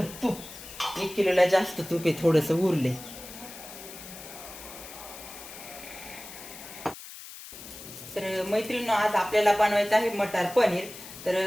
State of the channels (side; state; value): left; noise; hiss, 14 dB below the sound